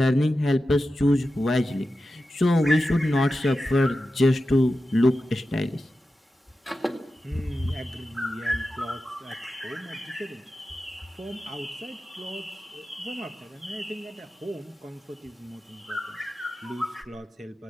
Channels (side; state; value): both; normal; correlation 0.92